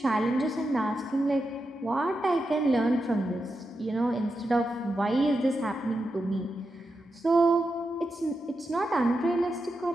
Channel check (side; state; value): both; normal; correlation 0.88